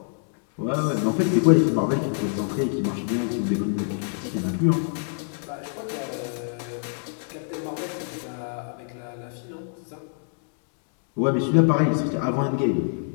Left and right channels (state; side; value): silent; right; 61 dB below the other